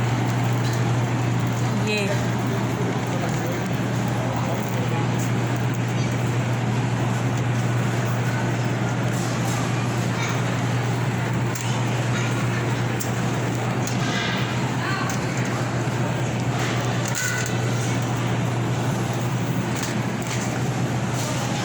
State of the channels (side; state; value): both; identical; correlation 1.00